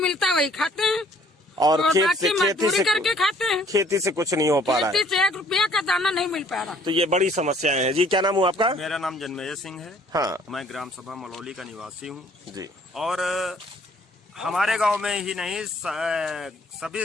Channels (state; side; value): normal; both; correlation 0.59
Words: है वही खाते हैं और खेती से करके खाते हैं। खेती से कुछ नहीं हो पा रहा है, खेती से 1 रुपया का दाना नहीं मिल पा रहा। तो ये बड़ी समस्याएं हैं जी। क्या नाम हुआ आपका? मेरा नाम जन्मेजय सिंह है। हाँ, मैं ग्राम सभा मलौली का निवासी हूँ जी। और हमारे गांव में ही नहीं,